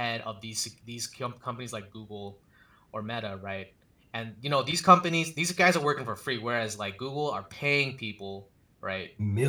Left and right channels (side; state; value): both; identical; correlation 1.00